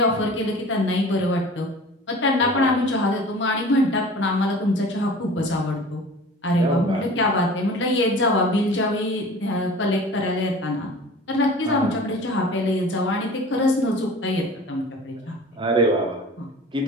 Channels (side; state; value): both; normal; correlation 0.42